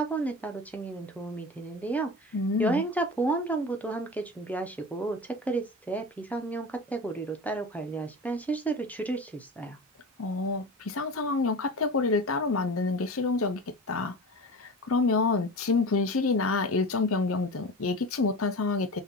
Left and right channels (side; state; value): both; normal; correlation 0.31